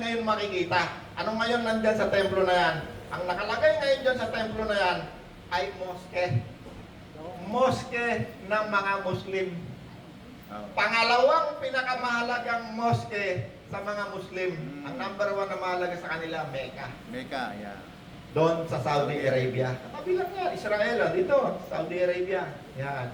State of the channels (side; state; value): both; identical; correlation 1.00